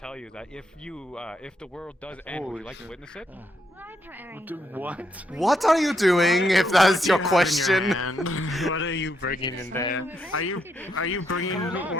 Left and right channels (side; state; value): both; normal; correlation 0.78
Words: you that if the world does end, would you like to witness it? What? What are you doing, if that's your question? What are you bringing in there? Are you bringing